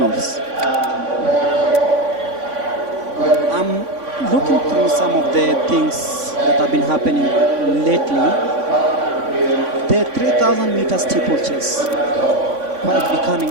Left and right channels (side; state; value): left; late; 3.5 ms